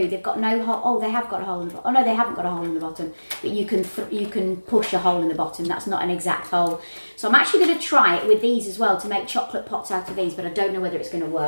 They've got no hole. Oh, they have got a hole in the bottom. Oh no, they haven't got a hole in the bottom, but you can push a hole in the bottom. That's not an exact hole. So I'm actually going to try it with these as well to make chocolate pots out of these, but I don't know whether it's going to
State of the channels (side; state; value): both; inverted; correlation -1.00